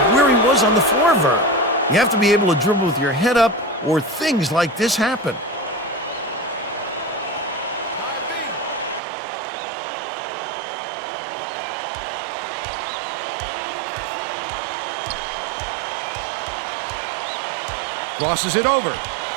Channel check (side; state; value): left; drops out; at 9.0 s